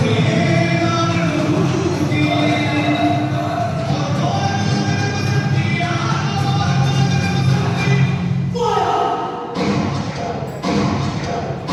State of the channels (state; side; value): identical; both; correlation 1.00